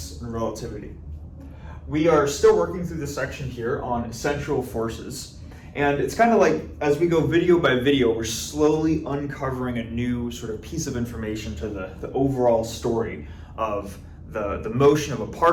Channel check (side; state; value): both; identical; correlation 1.00